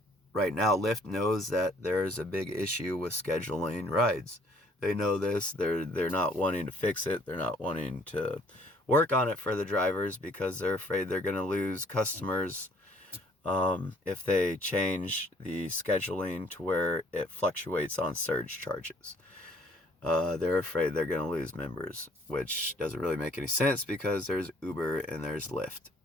Right now, Lyft knows that there's a big issue with scheduling rides. They know this. They're not wanting to fix it. They're not wanting to work on it for the drivers because they're afraid they're going to lose customers if they change the scheduling to where it fluctuates on surge charges. They're afraid they're going to lose members, which doesn't really make any sense because there's Uber and there's Lyft.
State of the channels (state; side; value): normal; both; correlation 0.60